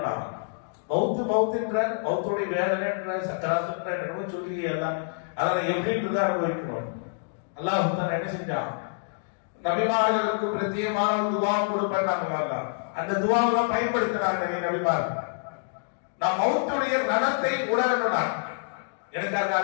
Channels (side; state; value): right; silent; digital silence